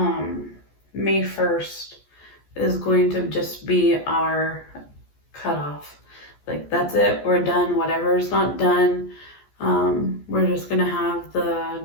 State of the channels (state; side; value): late; right; 14 ms